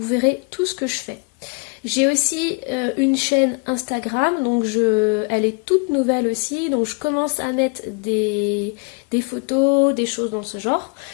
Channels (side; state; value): right; quieter; 34.8 dB